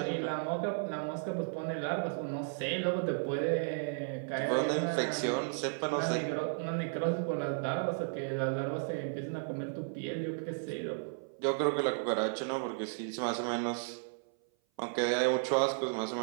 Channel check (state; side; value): silent; left; 55 dB below the other